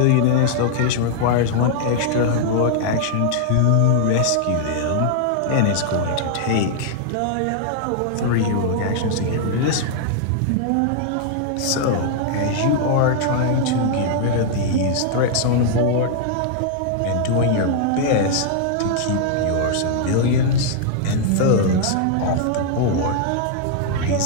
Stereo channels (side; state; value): both; different; correlation -0.01